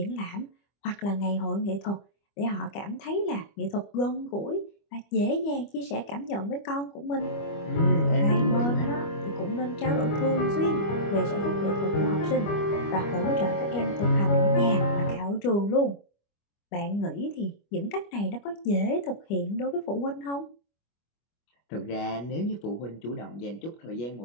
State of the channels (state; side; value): late; right; 25 ms